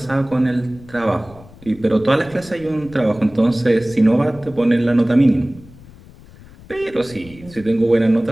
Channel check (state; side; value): noise; left; rumble, 21 dB below the sound